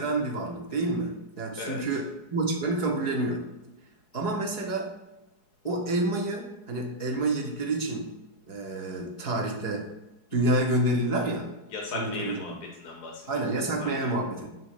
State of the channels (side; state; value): right; late; 4.7 ms